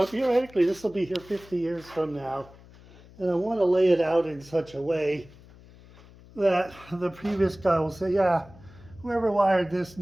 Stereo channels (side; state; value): left; noise; hum, 22 dB below the sound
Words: this will be here 50 years from now. And I want to lay it out in such a way that the previous guy will say, yeah, whoever wired this